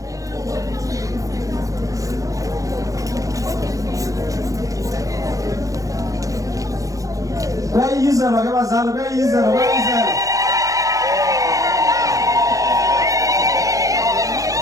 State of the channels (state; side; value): late; left; 0.16 ms